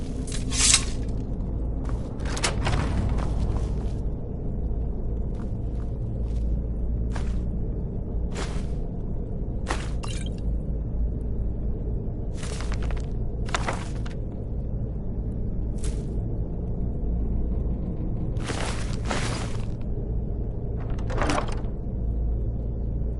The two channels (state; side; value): identical; both; correlation 1.00